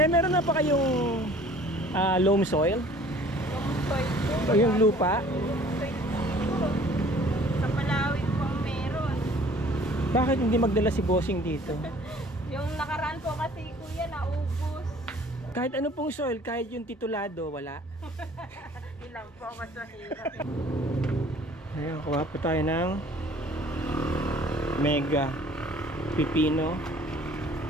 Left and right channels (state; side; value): normal; both; correlation 0.52